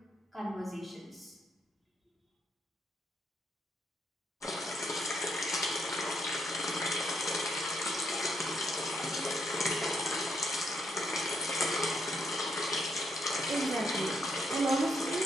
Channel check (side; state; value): both; normal; correlation 0.76